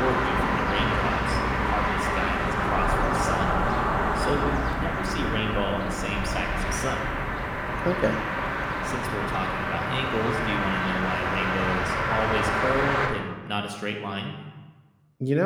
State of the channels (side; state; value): both; identical; correlation 1.00